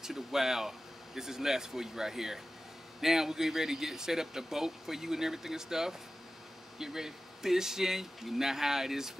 the Wild. This is Les for you right here. Now we're getting ready to get set up the boat for you and everything and stuff. Get ready fishing. You know how it is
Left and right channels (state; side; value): normal; both; correlation 0.95